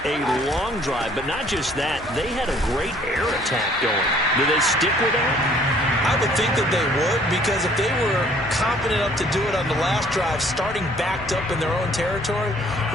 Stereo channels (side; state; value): both; normal; correlation 0.58